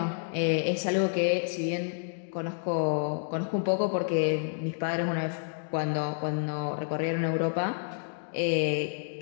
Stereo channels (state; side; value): silent; right; digital silence